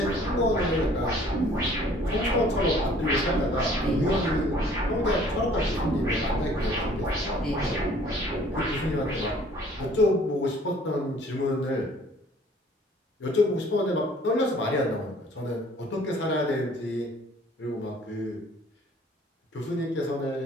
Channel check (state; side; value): normal; both; correlation 0.55